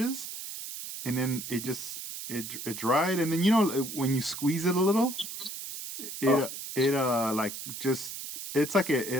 and then it dried, and then when you squeeze it a little, Oh, it like just it's like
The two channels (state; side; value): noise; right; hiss, 8 dB below the sound